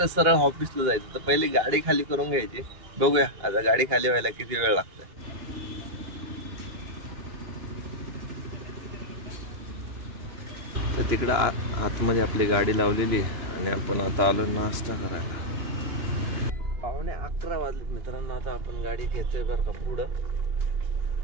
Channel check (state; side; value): late; left; 2.9 ms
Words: सरळ ऑफिसला जायचं. तर पहिली गाडी खाली करून घ्यायची. बघूया आता गाडी खाली व्हायला किती वेळ लागतोय. तर तिकडं आतमध्ये आपली गाडी लावलेली आहे आणि आपण आता आलो नाश्ता करायला. 11:15 वाजलेत मित्रांनो. आता आपण गाडी घेतोय बरं का पुढं.